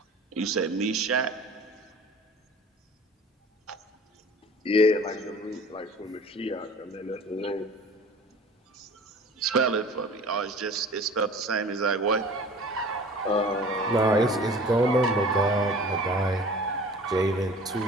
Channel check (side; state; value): both; normal; correlation 0.44